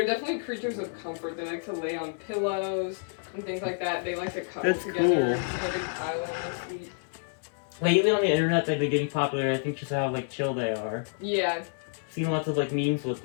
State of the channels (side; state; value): right; silent; digital silence